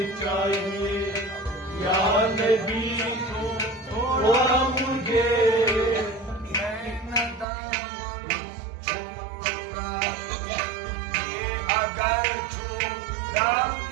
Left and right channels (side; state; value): left; drops out; at 7.5 s